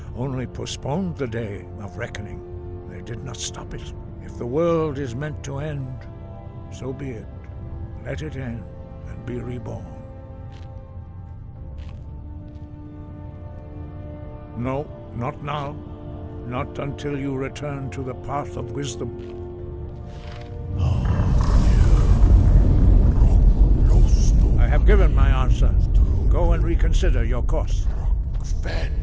only postponed the day of reckoning. They did not stop it. If the world is meant to end, so be it. Let it end and be reborn. No, not now. Not until you return to the path of wisdom. I have given my answer. Go and reconsider your course.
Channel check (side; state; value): both; identical; correlation 1.00